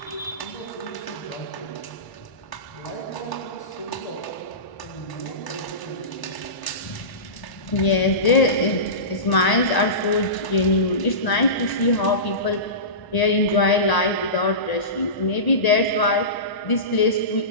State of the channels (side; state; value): right; late; 1.0 ms